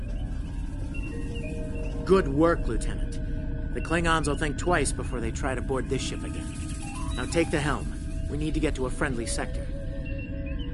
Good work, Lieutenant. The Klingons will think twice before they try to board this ship again. Now take the helm. We need to get to a friendly sector.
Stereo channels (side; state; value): both; identical; correlation 1.00